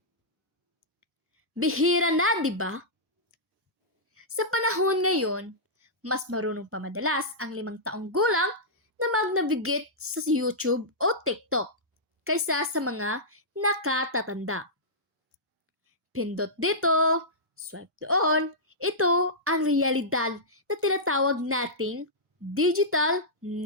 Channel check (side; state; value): both; normal; correlation -0.13